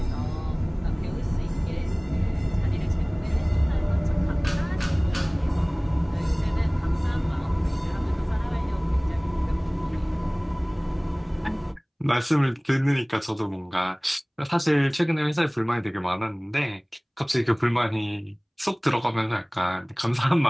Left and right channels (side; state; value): both; identical; correlation 1.00